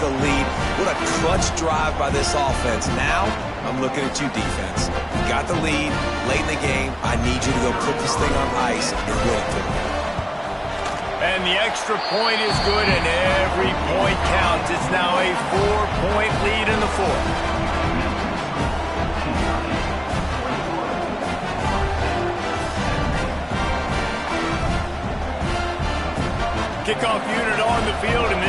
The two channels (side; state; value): both; identical; correlation 1.00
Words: lead. What a clutch drive by this offense. Now, I'm looking at you, defense. You got the lead late in the game. I need you to go put this thing on ice and win it for me. And the extra point is good, and every point counts. It's now a 4-point lead in the 4th. Kickoff unit on the field, and